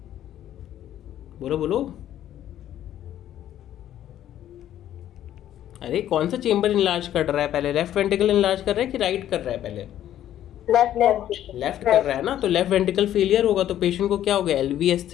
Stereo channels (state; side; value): quieter; right; 11.7 dB